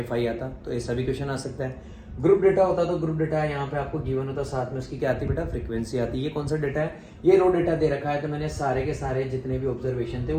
fi आता। तो ऐसा भी क्वेश्चन आ सकता है। ग्रुप डेटा होता तो ग्रुप डेटा यहाँ पे आपको गिवन होता, साथ में उसकी क्या आती बेटा, फ्रीक्वेंसी आती। ये कौन सा डेटा है, ये रो डेटा दे रखा है। तो मैंने सारे के सारे जितने भी ऑब्जर्वेशन थे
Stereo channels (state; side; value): identical; both; correlation 1.00